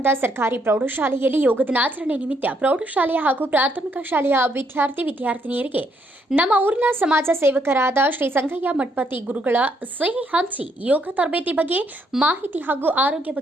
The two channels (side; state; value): both; normal; correlation 0.73